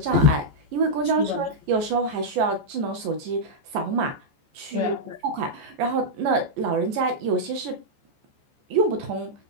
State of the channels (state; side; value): late; left; 14 ms